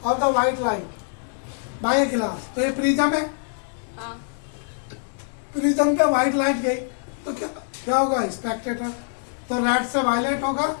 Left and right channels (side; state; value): right; silent; digital silence